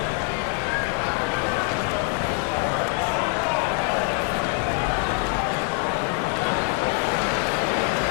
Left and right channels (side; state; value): right; quieter; 29.4 dB